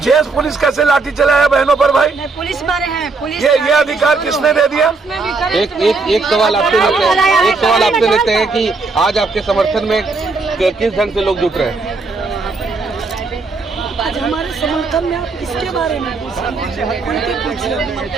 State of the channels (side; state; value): left; quieter; 4.0 dB